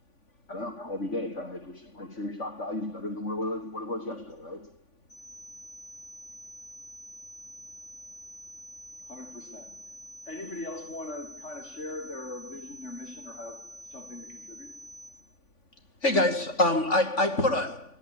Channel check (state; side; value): late; right; 3.5 ms